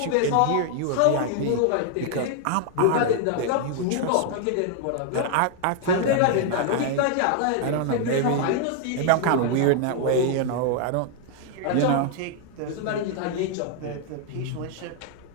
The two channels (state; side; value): different; both; correlation 0.00